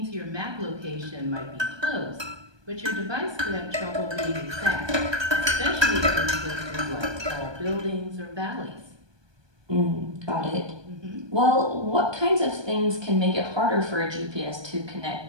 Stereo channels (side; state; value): left; late; 1.2 ms